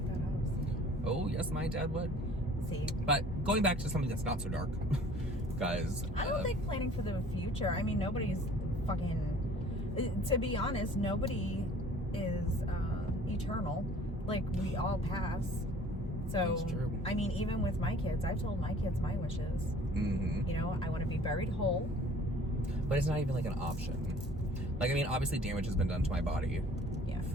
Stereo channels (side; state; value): both; normal; correlation 0.51